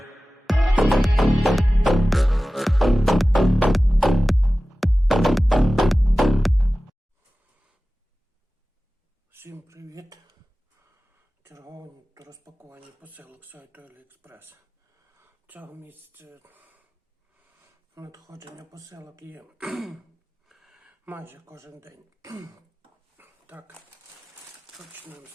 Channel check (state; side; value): normal; both; correlation 0.96